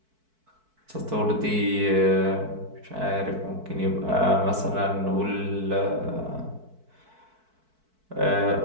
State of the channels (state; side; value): late; left; 4.6 ms